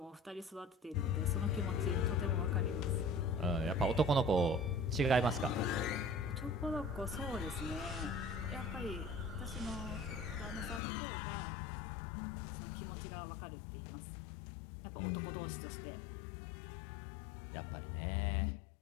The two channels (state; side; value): drops out; right; at 10.8 s